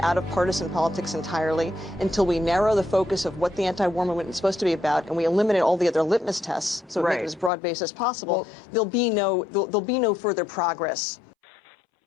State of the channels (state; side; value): drops out; right; at 7.5 s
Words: out of partisan politics entirely, until we narrow the focus of what the anti-war movement is supposed to be about, and we eliminate all the other litmus tests, so make it as broad-based as possible, there'll be no further progress. Hey,